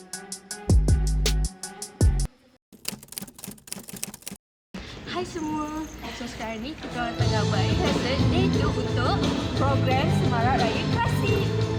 Hai semua. So sekarang ni kita orang tengah buat rehearsal debut untuk program Semarak Raya Klasik.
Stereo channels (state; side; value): identical; both; correlation 1.00